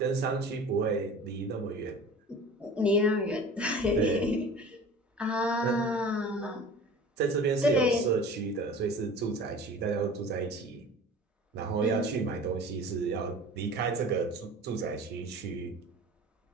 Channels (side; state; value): both; normal; correlation 0.40